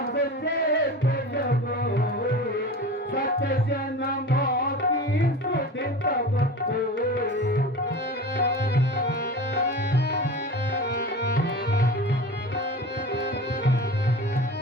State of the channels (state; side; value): normal; both; correlation 0.33